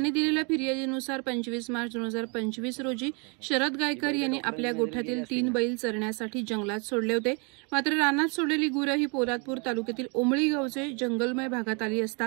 दिलेल्या फिर्यादीनुसार 25 मार्च 2025 रोजी शरद गायकर यांनी आपल्या गोठ्यातील 3 बैल चरण्यासाठी जंगलात सोडले होते। मात्र रानात सोडलेली गुरे ही पोलादपूर तालुक्यातील ओमळी गावचे जंगलमय भागात आली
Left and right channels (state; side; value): quieter; left; 33.7 dB